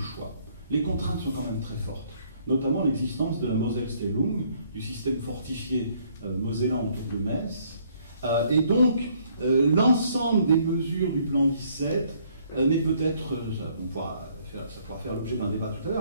choix. Les contraintes sont quand même très fortes, notamment l'existence de la Moselle-Stellung, du système fortifié mosellan autour de Metz. Et donc, l'ensemble des mesures du plan 17 n'est peut-être, ça pourra faire l'objet d'un débat tout à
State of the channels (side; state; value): both; inverted; correlation -0.65